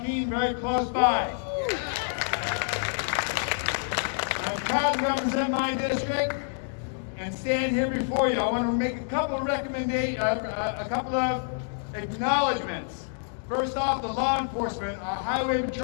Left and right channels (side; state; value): right; silent; digital silence